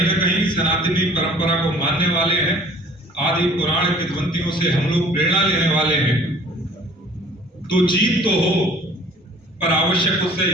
न कहीं सनातनी परंपरा को मानने वाले हैं, आदि पुराण किंवदंतियों से हम लोग प्रेरणा लेने वाले हैं। तो जीत तो हो, पर आवश्यक उससे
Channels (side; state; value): both; normal; correlation 0.50